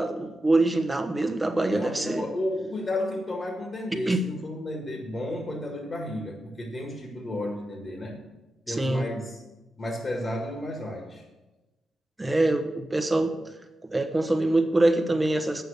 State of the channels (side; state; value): both; normal; correlation 0.91